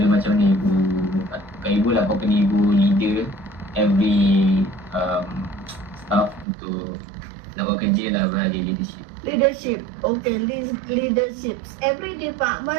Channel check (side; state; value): left; drops out; at 6.5 s